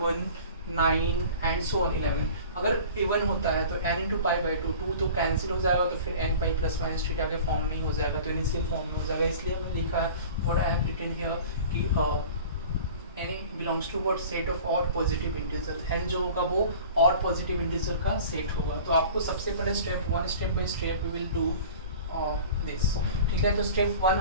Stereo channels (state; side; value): inverted; both; correlation -0.42